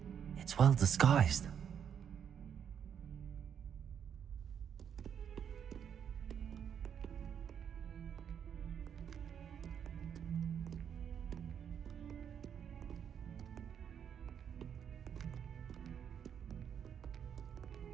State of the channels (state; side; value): quieter; left; 8.2 dB